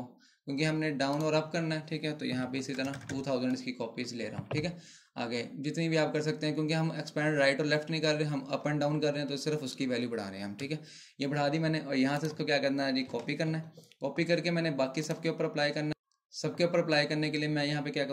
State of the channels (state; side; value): identical; both; correlation 1.00